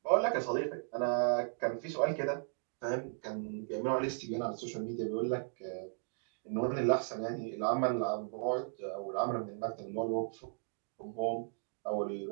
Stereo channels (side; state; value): left; silent; digital silence